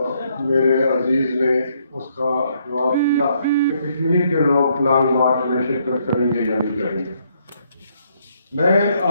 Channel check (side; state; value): both; inverted; correlation -0.72